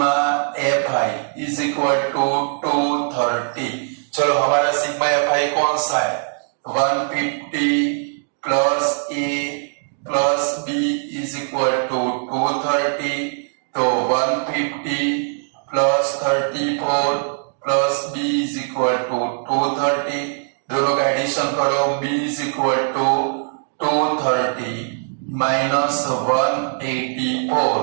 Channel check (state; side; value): silent; left; 65 dB below the other